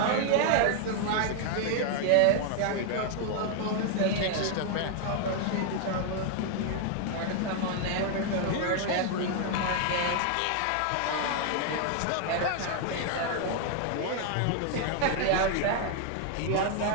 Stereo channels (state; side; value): different; both; correlation 0.00